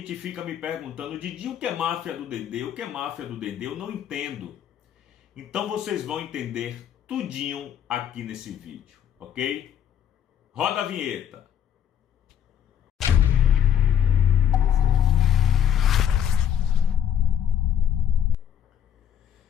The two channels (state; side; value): quieter; right; 9.4 dB